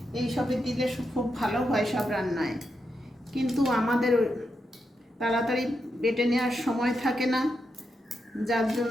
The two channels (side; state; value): both; normal; correlation 0.85